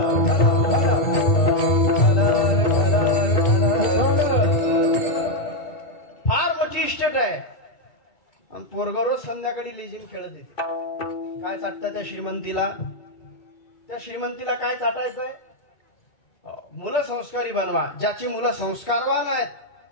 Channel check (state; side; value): late; right; 2.2 ms